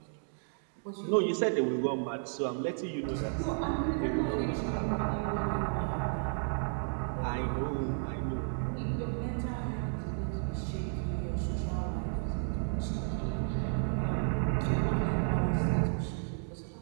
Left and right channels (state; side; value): silent; left; 56 dB below the other